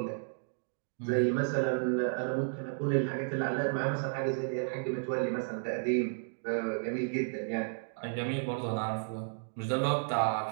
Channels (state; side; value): silent; left; digital silence